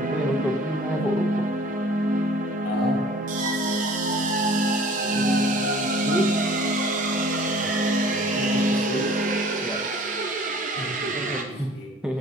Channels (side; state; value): both; normal; correlation 0.50